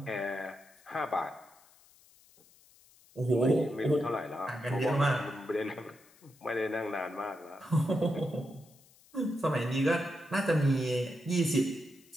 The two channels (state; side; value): noise; left; hiss, 28 dB below the sound